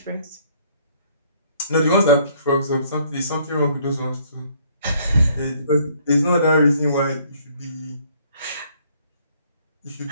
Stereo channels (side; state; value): both; inverted; correlation -0.62